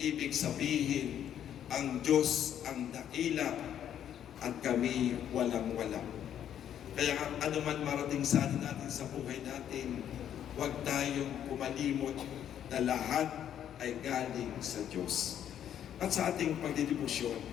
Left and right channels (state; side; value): quieter; right; 10.0 dB